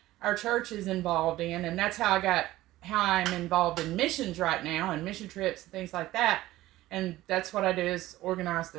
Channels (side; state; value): left; quieter; 16.3 dB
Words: our church is involved in, and that's how I'm involved in missions right now and mission trips and things like that. And that's what I do, is organize